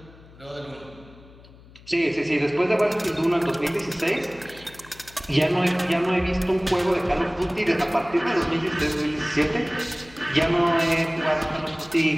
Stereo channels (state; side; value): noise; left; hum, 23 dB below the sound